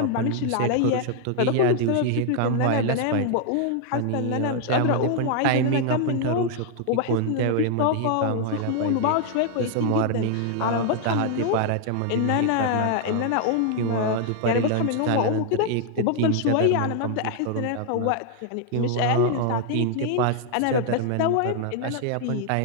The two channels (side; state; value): both; different; correlation 0.00